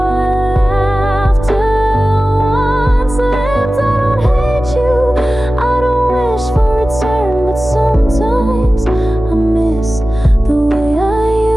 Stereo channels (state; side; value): normal; both; correlation 0.95